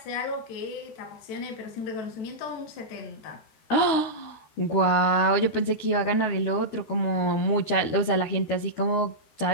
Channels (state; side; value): late; right; 13 ms